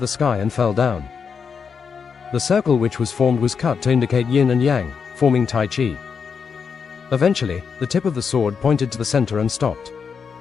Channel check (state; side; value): quieter; right; 6.2 dB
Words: the sky and fell down. The circle which was formed was cut to indicate yin and yang, forming Tai Chi. Eventually, the tip of the sword pointed to the center and stopped.